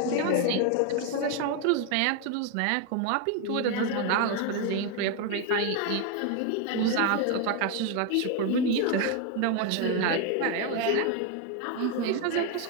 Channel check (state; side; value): different; both; correlation 0.01